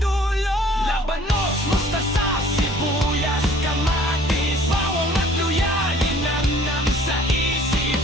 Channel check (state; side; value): normal; both; correlation 0.54